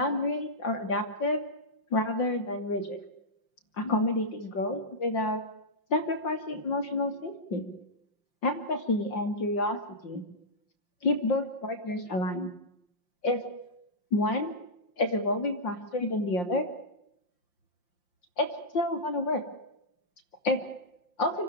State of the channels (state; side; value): late; right; 5.7 ms